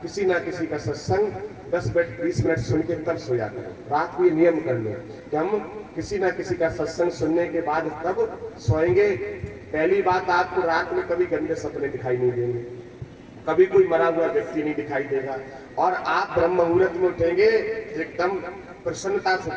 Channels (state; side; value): identical; both; correlation 1.00